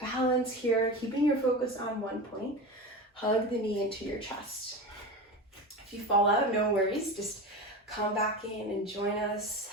balance here, keeping your focus on one point. Hug the knee into your chest. If you fall out, no worries. Just come back in and join us.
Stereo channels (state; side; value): normal; both; correlation 0.26